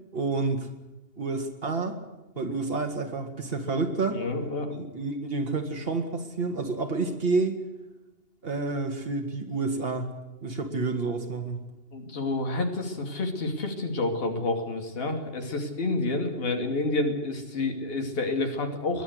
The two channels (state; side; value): late; right; 2.8 ms